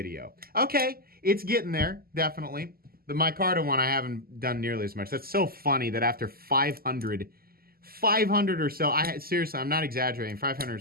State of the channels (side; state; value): left; late; 0.43 ms